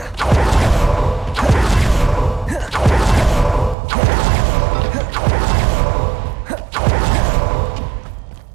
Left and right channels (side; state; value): left; drops out; at 3.8 s